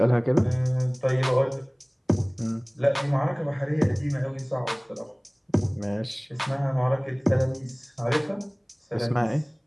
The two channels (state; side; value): identical; both; correlation 1.00